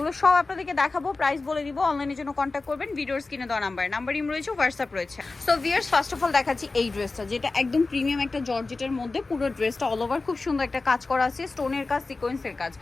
সব আপনাদেরকে দেখাবো, প্রাইস বলে দিব। অনলাইনের জন্য কন্ট্যাক্ট করবেন, ভিডিওর স্ক্রিনে দেওয়া নাম্বার ইম রয়েছে, হোয়াটসঅ্যাপ রয়েছে। So viewers, first of all দেখাচ্ছি এই ড্রেসটা, যেটা একদম প্রিমিয়াম একটা জর্জেটের মধ্যে। পুরো ড্রেসটা অল ওভার খুব সুন্দর একটা কাজ করা আছে, স্টোনের কাজ, সিকোয়েন্সের কাজ।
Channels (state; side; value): quieter; right; 3.6 dB